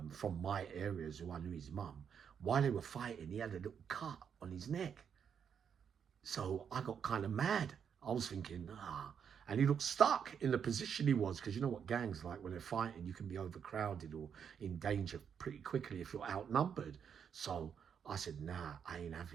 from my areas, who I knew his mum, while they were fighting, he had a little cut on his neck. So I got kind of mad. I was thinking, and he looked stuck in the position he was, because you know what gangs like when they're fighting, you can be overcrowded or in danger pretty quickly if you're outnumbered. So I said, nah, I ain't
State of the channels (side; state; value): left; quieter; 7.5 dB